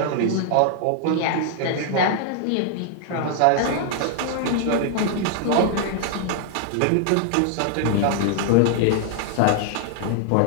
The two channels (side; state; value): both; different; correlation 0.00